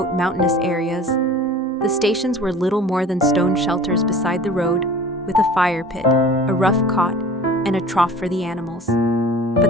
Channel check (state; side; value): normal; both; correlation 0.43